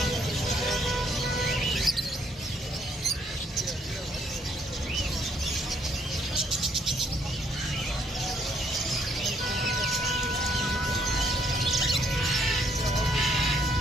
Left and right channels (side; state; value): both; normal; correlation 0.68